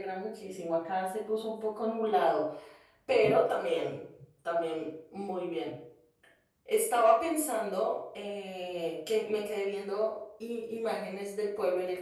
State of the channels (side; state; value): both; identical; correlation 1.00